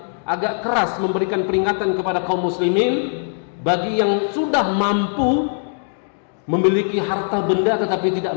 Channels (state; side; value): silent; right; digital silence